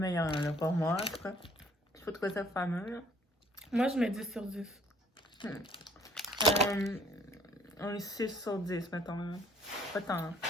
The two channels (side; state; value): both; normal; correlation 0.59